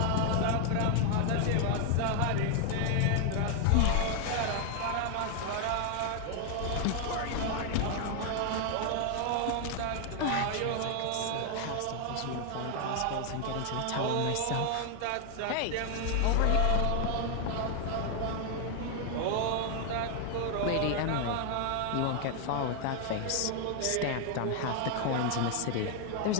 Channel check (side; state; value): both; different; correlation 0.00